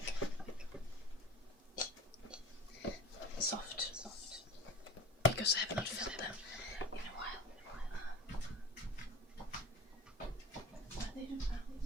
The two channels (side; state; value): both; normal; correlation 0.37